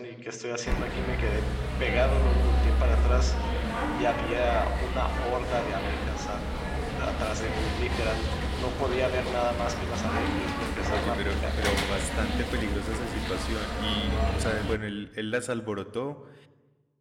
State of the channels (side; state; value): both; identical; correlation 1.00